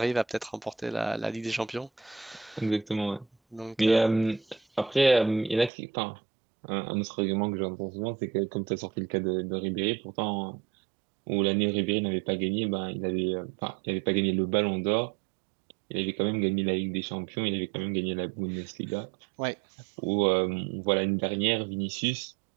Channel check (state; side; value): drops out; left; at 5.7 s